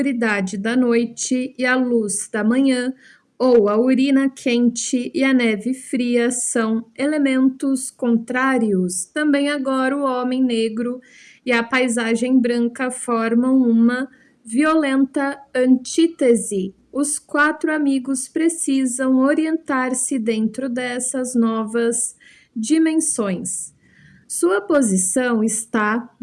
da noite e a luz da manhã, ou a urina quente e a neve fria são elementos contrários, também agora o homem negro e a paisagem branca formam uma violenta antítese. Os quatro amigos precisam orientar-se dentro dessas novas dimensões. Sua posição está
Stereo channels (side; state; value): both; identical; correlation 1.00